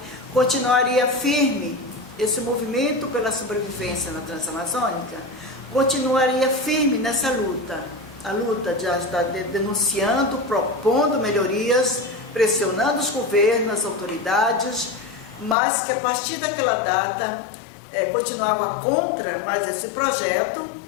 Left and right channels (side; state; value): right; drops out; at 15.6 s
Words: continuaria firme, esse movimento pela sobrevivência na Transamazônica continuaria firme nessa luta, a luta de estar denunciando, propondo melhorias, pressionando os governos, as autoridades, mas que a partir daquela data continuava contra mais esse projeto,